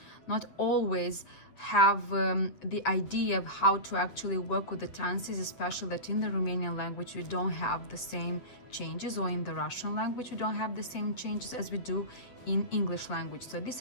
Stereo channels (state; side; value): late; right; 8.0 ms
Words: not always have the idea of how to actually work with the tenses, especially that in the Romanian language we don't have the same changes, or in the Russian language we don't have the same changes as we do in English language. So this